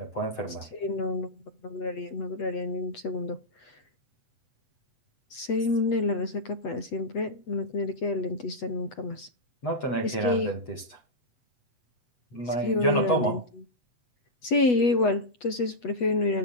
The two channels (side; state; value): right; late; 8.2 ms